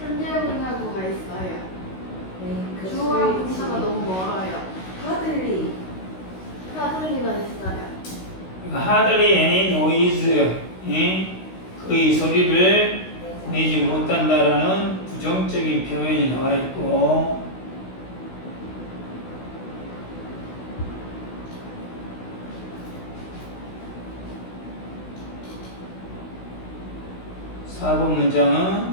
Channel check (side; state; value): right; late; 16 ms